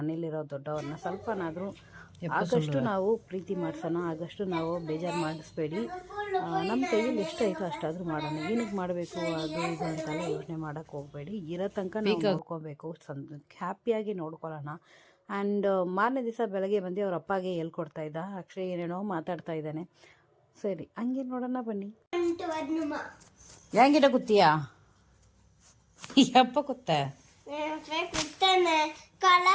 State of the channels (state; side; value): identical; both; correlation 1.00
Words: ದೊಡ್ಡವ್ರನ್ನ ಸ್ವಲ್ಪನಾದರೂ ಆಗಷ್ಟು ನಾವು ಪ್ರೀತಿ ಮಾಡಿಸೋಣ, ಆಗಷ್ಟು ನಾವು ಬೇಜಾರು ಮಾಡಿಸ್ಬೇಡಿ. ನಮ್ಮ ಕೈಯಲ್ಲಿ ಎಷ್ಟಾಯಿತೋ ಅಷ್ಟಾದರೂ ಮಾಡೋಣ. ಏನಕ್ಕೆ ಮಾಡಬೇಕು ಅದು ಇದು ಅಂತೆಲ್ಲ ಯೋಚನೆ ಮಾಡೋಕ್ಕೆ ಹೋಗಬೇಡಿ. ಇರೋ ತನಕ ನಾವು ನೋಡ್ಕೋಬೇಕು, ಹ್ಯಾಪಿಯಾಗಿ ನೋಡ್ಕೊಳ್ಳೋಣ. ಆ್ಯಂಡ್ ಮಾರನೇ ದಿವಸ ಬೆಳಗ್ಗೆ ಬಂದು ಅವ್ರ ಅಪ್ಪಗೆ ಹೇಳ್ಕೊಡ್ತಾ ಇದ್ದ. ಅಕ್ಷಯ್ ಏನೇನೋ ಮಾತಾಡ್ತಾ ಇದ್ದಾನೆ. ಸರಿ, ಹಂಗೆ ನೋಡೋಣ ಬನ್ನಿ. என்கிட்ட குத்தியா? எப்ப குத்த?